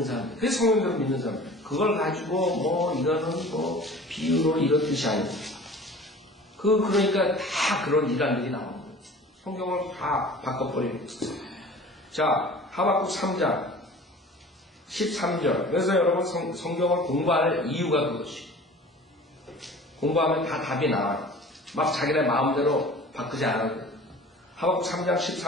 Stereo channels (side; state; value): both; normal; correlation 0.43